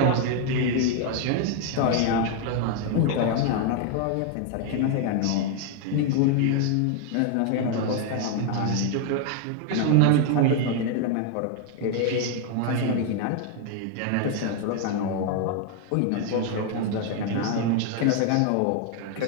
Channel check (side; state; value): both; different; correlation 0.00